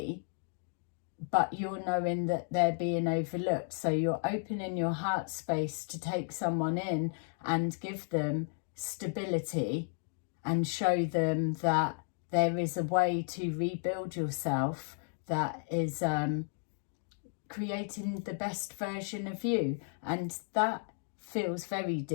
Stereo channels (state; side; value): silent; right; 55 dB below the other